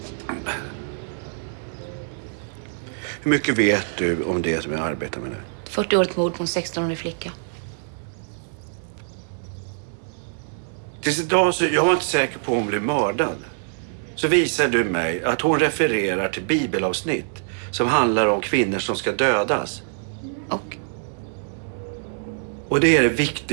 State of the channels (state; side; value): silent; left; 63 dB below the other